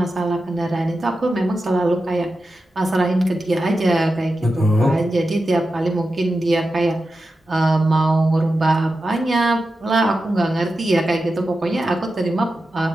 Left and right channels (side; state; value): both; normal; correlation 0.91